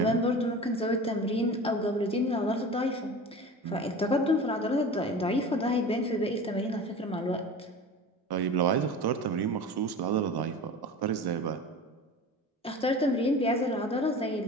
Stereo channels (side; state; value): both; normal; correlation 0.35